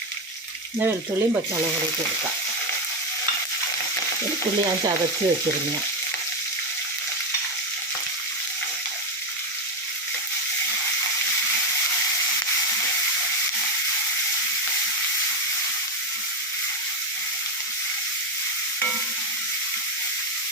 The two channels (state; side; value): normal; both; correlation 0.09